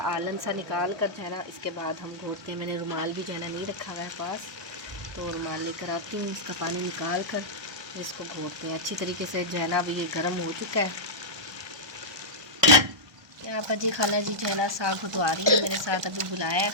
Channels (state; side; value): late; left; 1.2 ms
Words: आलन सा निकाल कर जो है ना इसके बाद हम घोटते हैं। मैंने रुमाल भी जो है ना नहीं रखा हुआ है पास, तो रुमाल लेकर आती हूँ, इसका पानी निकाल कर इसको घोटते हैं अच्छी तरीके से। जो है ना अभी ये गर्म हो चुका है। यहाँ पर जी खाला जी जो है ना साग घुटवा रही है मेरे साथ, अभी बुलाया है